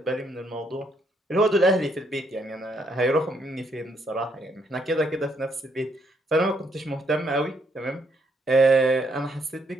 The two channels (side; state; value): both; normal; correlation 0.72